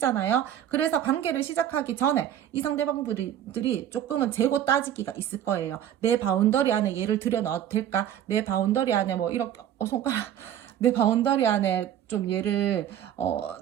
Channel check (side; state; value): left; quieter; 10.6 dB